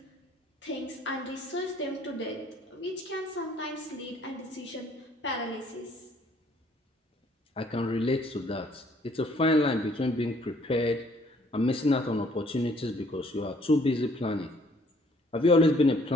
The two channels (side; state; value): both; normal; correlation 0.62